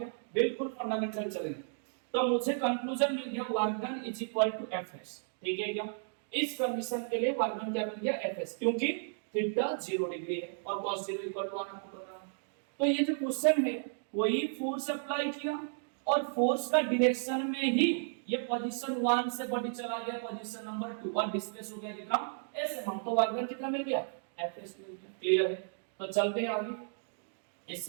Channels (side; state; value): left; silent; digital silence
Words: बिल्कुल फंडामेंटल चलेंगे। तो मुझे कंक्लूजन मिल गया, work done is equal to F S, ठीक है क्या। इस कंडीशन के लिए वर्क डन क्या मिल गया, एफ एस, क्योंकि थीटा 0 डिग्री है और cos 0 इक्वल टू 1 आपको पता है। तो ये जो क्वेश्चन है, कोई फोर्स अप्लाई किया और फोर्स का डायरेक्शन में ही ये पोजीशन 1 से बॉडी चला गया पोजीशन नंबर 2 और डिस्प्लेस हो गया कितना एस एम तो वर्क डन कितना मिल गया एफ एस मिल गया। क्लियर है? तो चलते हैं आगे।